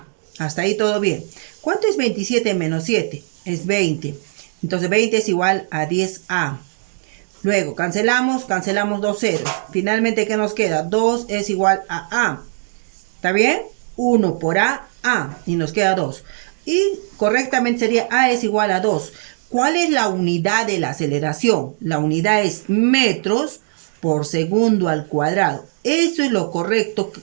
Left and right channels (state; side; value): silent; left; digital silence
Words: Hasta ahí todo bien. ¿Cuánto es 27 menos 7? Es 20. Entonces 20 es igual a 10A. Luego cancelamos dos ceros. Finalmente, ¿qué nos queda? 2 es igual a A. ¿Está bien? 1 por A, A. Y nos queda 2. Y correctamente sería A es igual a 2. ¿Cuál es la unidad de la aceleración? La unidad es metros por segundo al cuadrado. Eso es lo correcto,